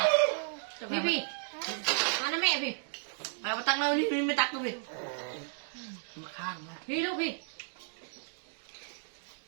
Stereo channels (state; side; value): silent; left; digital silence